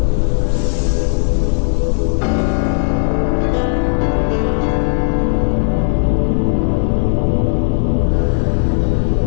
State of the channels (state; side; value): silent; right; digital silence